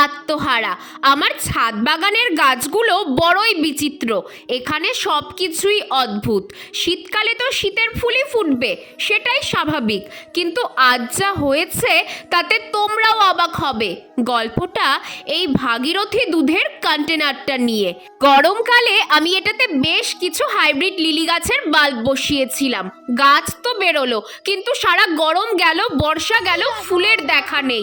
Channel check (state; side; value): identical; both; correlation 1.00